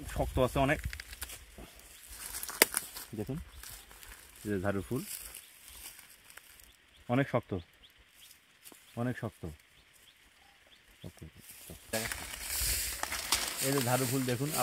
শক্ত আছে অনেক, দেখুন এই যে ঝাড়ুর ফুল অনেক শক্ত, এই যে ঝাড়ু ফুল, দেখুন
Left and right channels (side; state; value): both; identical; correlation 1.00